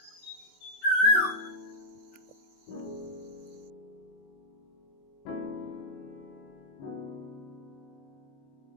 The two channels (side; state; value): right; late; 21 ms